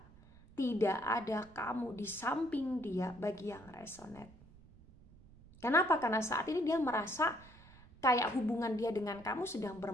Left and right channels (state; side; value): noise; right; rumble, 23 dB below the sound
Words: tidak ada kamu di samping dia bagi yang resonate. Kenapa? Karena saat ini dia merasa kayak hubungan dia dengan kamu sedang